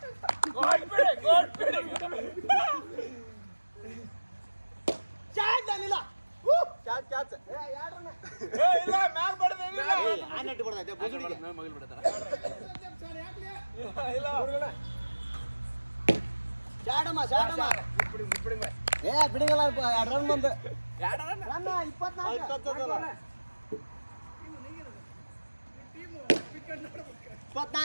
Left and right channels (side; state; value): both; inverted; correlation -1.00